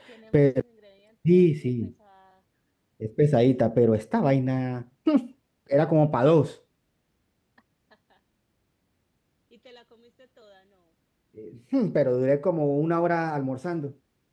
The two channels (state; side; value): identical; both; correlation 1.00